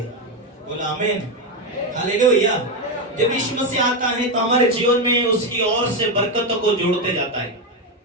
बोला आमीन, हालेलुया। जब यीशु मसीह आता है तो हमारे जीवन में उसकी ओर से बरकतों को जोड़ते जाता है।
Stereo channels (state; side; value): normal; both; correlation 0.09